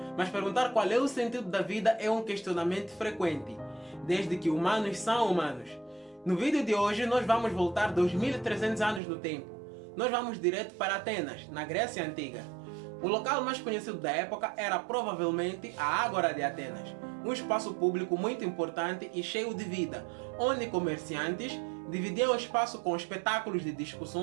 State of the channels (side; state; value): left; drops out; at 9.0 s